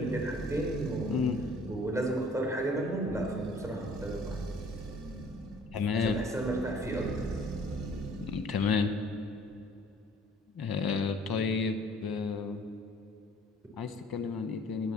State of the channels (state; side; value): normal; both; correlation 0.55